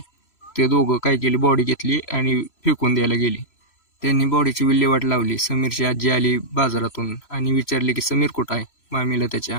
ते दोघं काय केली, बॉडी घेतली आणि फेकून द्यायला गेली. त्यांनी बॉडीची विल्हेवाट लावली. समीरची आजी आली बाजारातून आणि विचारले की समीर कुठं आहे मामीला त्याच्या.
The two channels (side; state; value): right; late; 3.0 ms